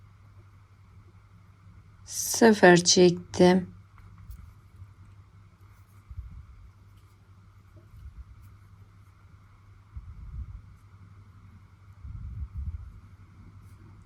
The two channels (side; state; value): both; identical; correlation 1.00